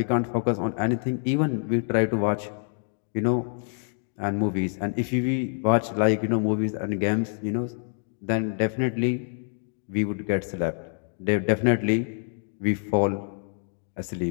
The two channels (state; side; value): silent; right; 61 dB below the other